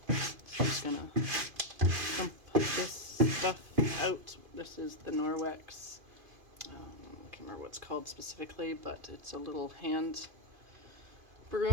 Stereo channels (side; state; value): left; late; 2.5 ms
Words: I'm just gonna dump this stuff out. This is the Norwex. I can't remember what it's called specifically, but it's a little hand